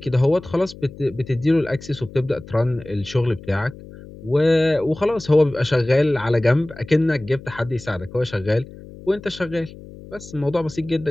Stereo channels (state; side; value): noise; left; hum, 17 dB below the sound